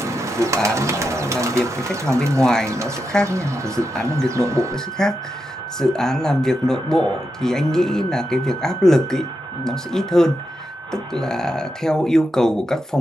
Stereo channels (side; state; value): both; normal; correlation 0.87